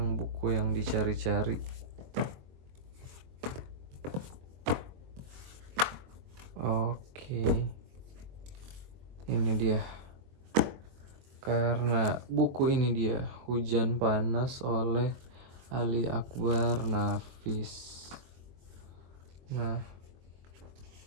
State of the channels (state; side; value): late; left; 23 ms